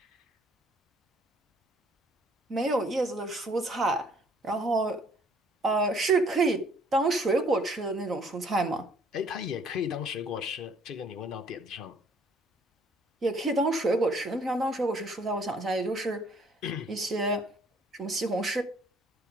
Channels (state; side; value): normal; both; correlation 0.60